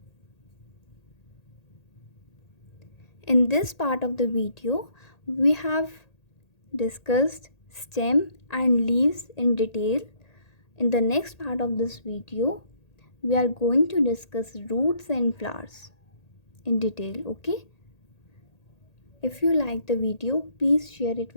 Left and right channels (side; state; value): right; late; 1.8 ms